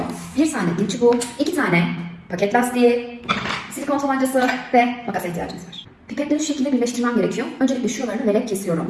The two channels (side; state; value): both; identical; correlation 1.00